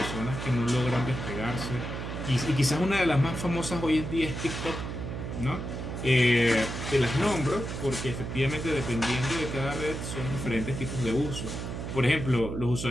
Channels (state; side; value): noise; right; hum, 5 dB below the sound